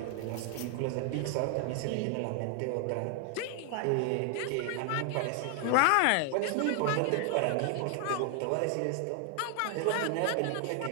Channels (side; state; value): both; different; correlation 0.00